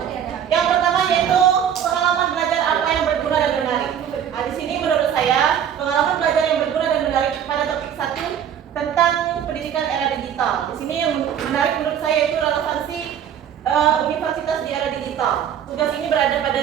Yang pertama yaitu pengalaman belajar apa yang berguna dan menarik. Nah, di sini menurut saya pengalaman belajar yang berguna dan menarik pada topik 1 tentang pendidikan era digital. Di sini yang menarik menurut saya yaitu relevansi universitas di era digital. Tugas ini berada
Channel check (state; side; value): quieter; left; 9.1 dB